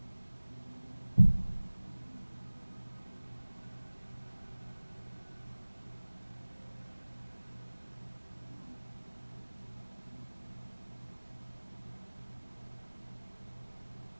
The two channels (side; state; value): both; inverted; correlation -1.00